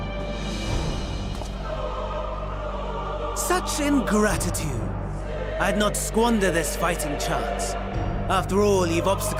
Such ingratitude. I'd not squander this fighting chance. After all, you've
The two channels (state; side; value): identical; both; correlation 1.00